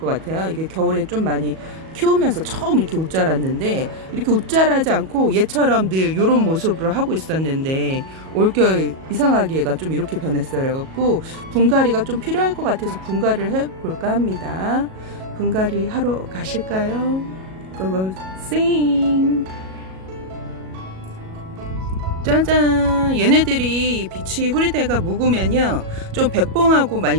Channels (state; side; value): late; left; 37 ms